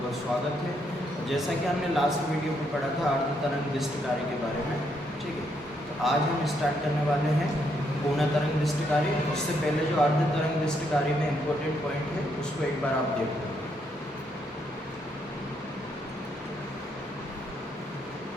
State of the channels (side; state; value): both; normal; correlation 0.75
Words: बहुत स्वागत है। जैसा कि हमने लास्ट वीडियो में पढ़ा था अर्ध तरंग दिष्ट कार्य के बारे में, ठीक है। तो आज हम स्टार्ट करने वाले हैं पूर्ण तरंग दिष्ट कार्य। उससे पहले जो अर्ध तरंग दिष्ट कार्य में इम्पोर्टेंट पॉइंट है उसको एक बार आप देख लो।